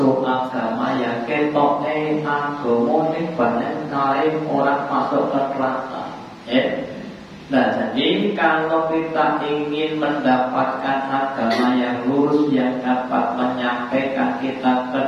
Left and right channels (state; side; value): identical; both; correlation 1.00